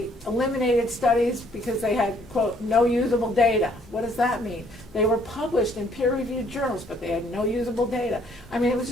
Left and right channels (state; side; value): normal; both; correlation 0.64